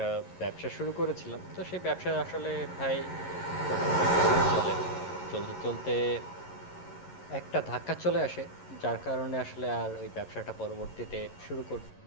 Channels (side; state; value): right; late; 11 ms